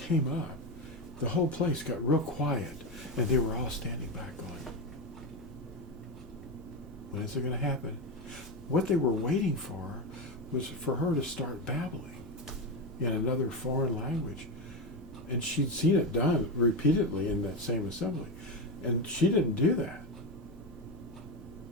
up, the whole place got real quiet, and they were all standing back going, when is it going to happen? What they were waiting for was for her to start babbling in another foreign language. And she'd seen it done repeatedly in that same assembly. And she didn't do that.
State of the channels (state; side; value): normal; both; correlation 0.14